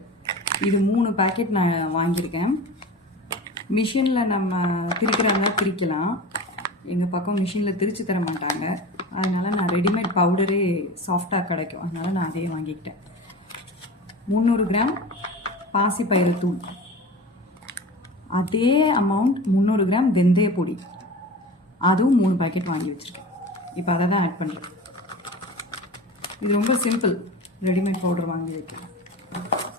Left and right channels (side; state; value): both; normal; correlation 0.33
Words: இது 3 பேக்கெட் நான் வாங்கியிருக்கேன். மிஷினில் நம்ம திரிக்கிறதா திரிக்கலாம். எங்கள் பக்கம் மிஷினில் திரிச்சு தர மாட்டாங்க, அதனால் நான் ரெடிமேட் பவுடரே சாஃப்டாக கிடைக்கும், அதனால் நான் அதே வாங்கிக்கிட்டேன். 300 கிராம் பாசி பயிறு தூள், அதே அமௌண்ட் 300 கிராம் வெந்தய பொடி, அதுவும் 3 பேக்கெட் வாங்கி வச்சுருக்கேன். இப்போ அதை தான் ஆட் பண்ணுறேன். இது ரொம்ப சிம்பிள், ரெடிமேட் பவுடர் வாங்கி வைக்கலாம்.